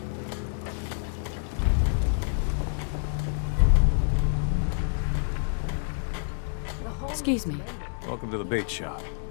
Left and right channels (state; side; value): silent; right; digital silence